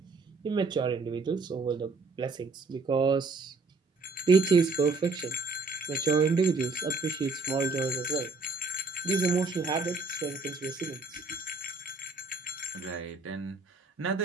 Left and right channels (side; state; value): left; quieter; 3.9 dB